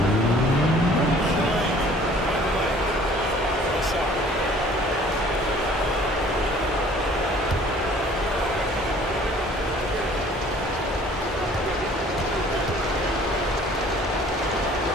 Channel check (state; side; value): normal; both; correlation 0.53